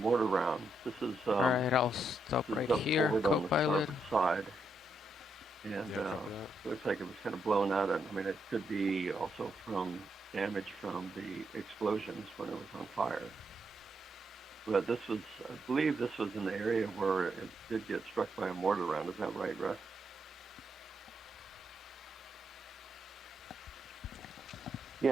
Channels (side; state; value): both; normal; correlation 0.80